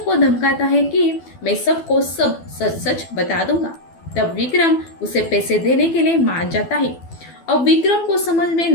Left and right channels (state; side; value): late; right; 12 ms